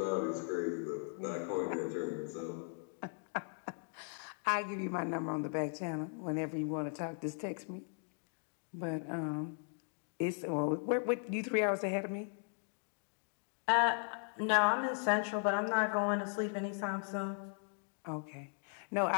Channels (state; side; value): silent; right; 53 dB below the other